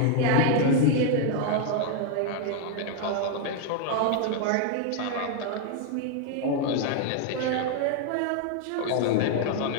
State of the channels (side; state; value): both; different; correlation 0.00